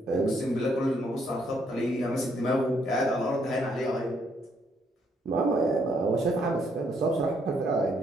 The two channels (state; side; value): normal; both; correlation 0.71